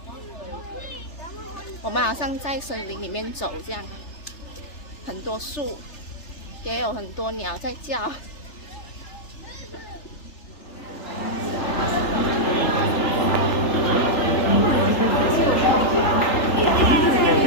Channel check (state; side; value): late; right; 3.3 ms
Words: 我们好像在森林里面走这样，很多树，也有很多鸟在叫。